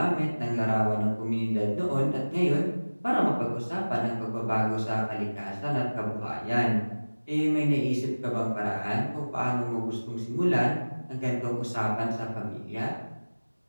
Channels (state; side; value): inverted; both; correlation -1.00